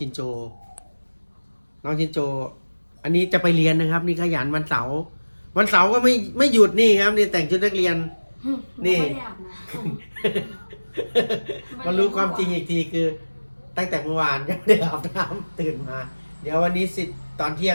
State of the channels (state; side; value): inverted; both; correlation -1.00